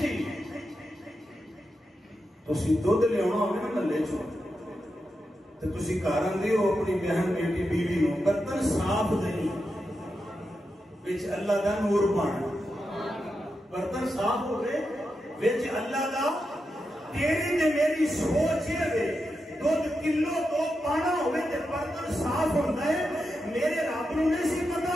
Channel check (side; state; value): both; normal; correlation 0.87